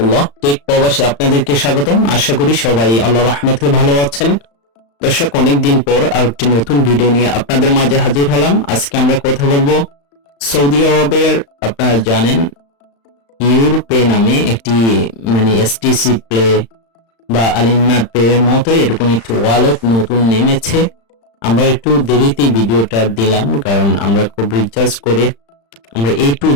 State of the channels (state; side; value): late; right; 35 ms